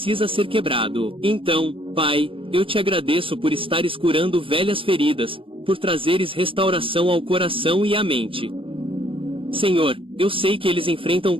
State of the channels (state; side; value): late; left; 0.26 ms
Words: ser quebrado. Então, Pai, eu te agradeço por estares curando velhas feridas, por trazeres restauração ao coração e à mente. Senhor, eu sei que eles enfrentam